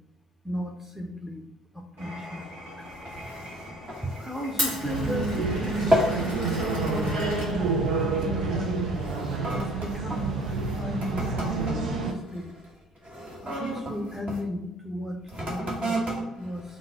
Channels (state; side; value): normal; both; correlation 0.53